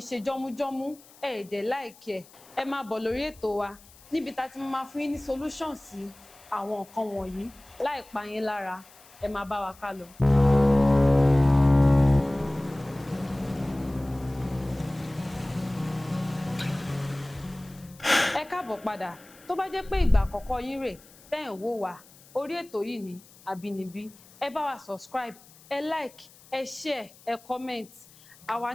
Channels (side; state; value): left; noise; hiss, 24 dB below the sound